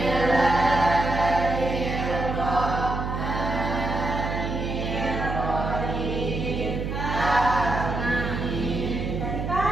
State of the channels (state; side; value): noise; right; hum, 3 dB below the sound